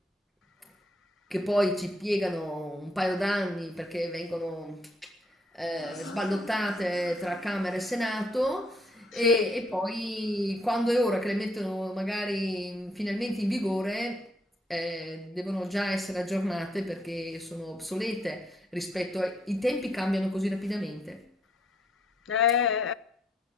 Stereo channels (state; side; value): normal; both; correlation 0.72